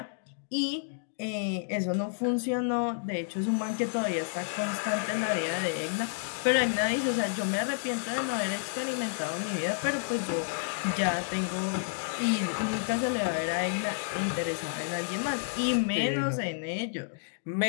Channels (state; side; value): silent; right; digital silence